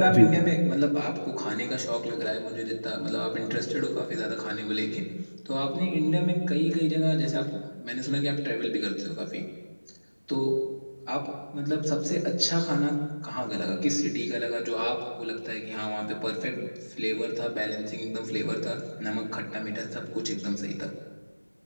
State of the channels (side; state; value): both; inverted; correlation -1.00